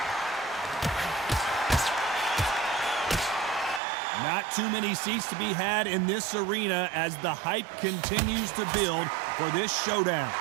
Not too many seats to be had in this arena as the hype continues to build for this showdown.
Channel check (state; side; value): drops out; left; at 3.8 s